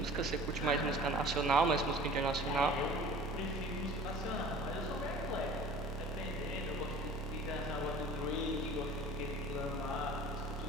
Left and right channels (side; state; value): both; normal; correlation 0.44